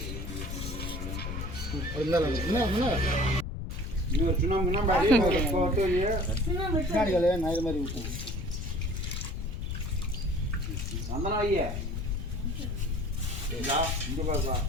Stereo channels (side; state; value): left; noise; rumble, 5 dB below the sound